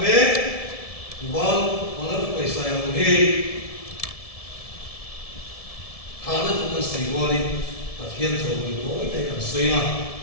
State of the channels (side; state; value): right; late; 1.7 ms